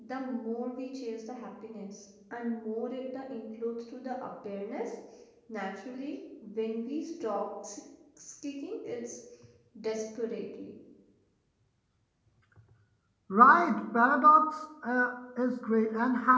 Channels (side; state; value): both; identical; correlation 1.00